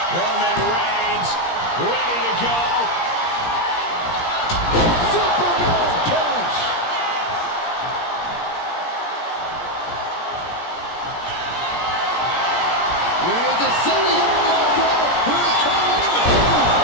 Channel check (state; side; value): late; right; 17 ms